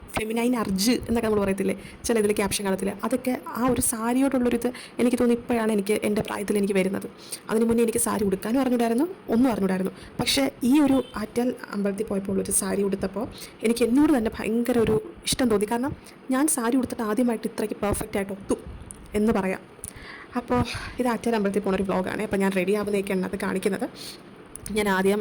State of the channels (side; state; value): both; identical; correlation 1.00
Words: ഫെമിനൈൻ അർജ് എന്നൊക്കെ നമ്മൾ പറയത്തില്ലേ ചില ഇതിൽ ക്യാപ്ഷൻ കാണത്തില്ല, അതൊക്കെ ആ ഒരു സാരിയോടുള്ളൊരിത് എനിക്ക് തോന്നുന്നു ഇപ്പോഴാണ് എൻ്റെ പ്രായത്തിൽ എനിക്ക് വരുന്നത്. അതിന് മുന്നേ എനിക്ക് സാരി ഉടുക്കാനും അറിഞ്ഞൂടായിരുന്നു. പക്ഷേ ഈ ഒരു ആറ്റാൽ അമ്പലത്തിൽ പോയപ്പോൾ ഒരു സാരി ഉടുത്തപ്പോൾ എനിക്ക് എന്നോട് തന്നെ ഭയങ്കര ഒരു ഇഷ്ടം തോന്നി. കാരണം ഞാൻ സാരി ഉടുത്തിട്ട് ആദ്യമായിട്ട് ഇത്രയ്ക്ക് പെർഫെക്റ്റായിട്ട് ഒത്തു എന്ന് പറയാം. അപ്പോൾ ഇത് ആറ്റാൽ അമ്പലത്തിൽ പോകുന്നൊരു വ്ളോഗാണ്. അപ്പോൾ ഞാൻ റെഡി ആവുന്നതൊക്കെയാണ് അത് കാണിക്കുന്നത്. ഞാൻ ആദ്യം